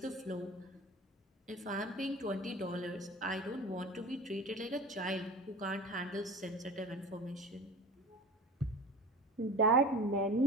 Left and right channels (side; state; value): both; normal; correlation 0.36